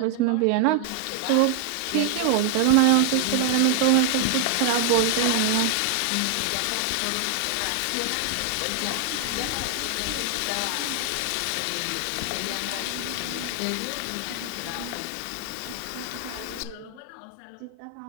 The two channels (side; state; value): both; different; correlation 0.00